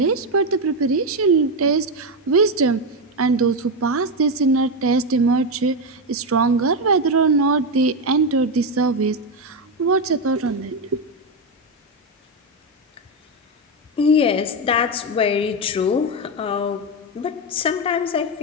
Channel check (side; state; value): both; normal; correlation 0.09